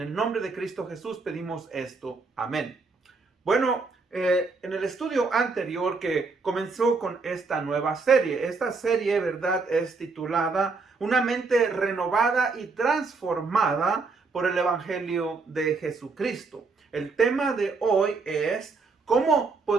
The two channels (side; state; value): left; quieter; 4.2 dB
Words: nombre de Cristo Jesús pedimos esto. Amén. Bueno, en el estudio anterior que comenzó con esta nueva serie, esta serie, ¿verdad?, es titulada Una mente renovada y transformada por el Evangelio de Jesucristo. El tema de hoy es ¿cómo